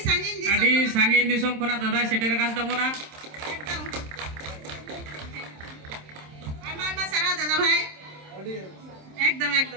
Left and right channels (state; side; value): late; left; 27 ms